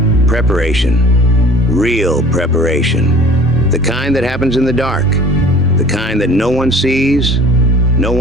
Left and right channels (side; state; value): both; normal; correlation 0.47